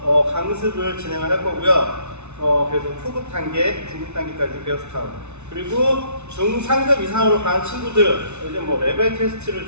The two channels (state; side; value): late; left; 0.82 ms